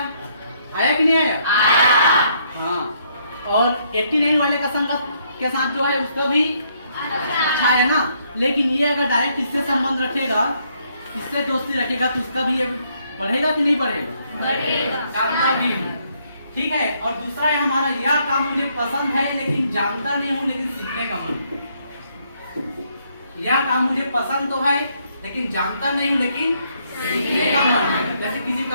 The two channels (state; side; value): inverted; both; correlation -0.71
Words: कि नहीं आया? हाँ। और 89 वाले का संगत के साथ जो है उसका भी अच्छा है ना। लेकिन ये अगर डायरेक्ट इससे संबंध रखेगा, इससे दोस्ती रखेगा तो इसका भी ये बढ़ेगा कि नहीं बढ़ेगा? जानता भी हूँ, ठीक है। और दूसरा है हमारा, यह काम मुझे पसंद है लेकिन जानता नहीं हूँ, लेकिन सीखने का मन। यह काम मुझे पसंद तो है लेकिन जानता नहीं हूँ, लेकिन सीखने का मन है। जैसे किसी